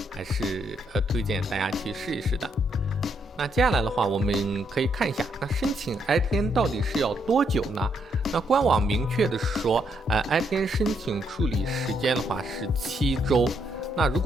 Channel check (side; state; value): both; normal; correlation 0.75